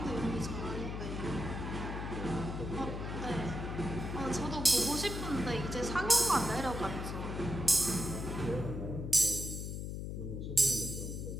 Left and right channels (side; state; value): left; noise; hum, 5 dB below the sound